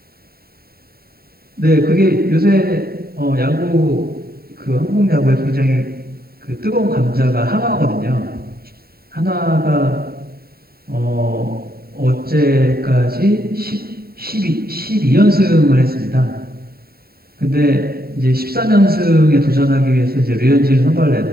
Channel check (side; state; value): left; late; 0.45 ms